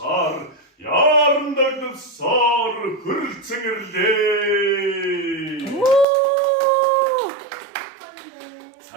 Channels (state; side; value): drops out; left; at 6.1 s